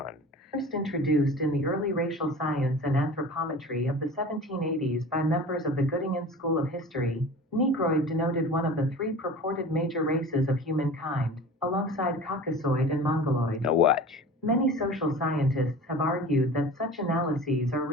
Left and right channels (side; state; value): both; normal; correlation 0.38